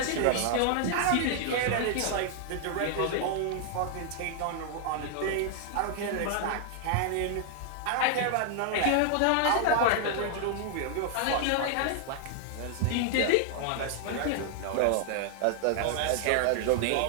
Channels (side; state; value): both; different; correlation 0.00